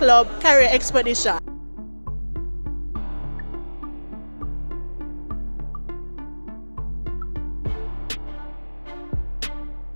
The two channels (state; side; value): inverted; both; correlation -1.00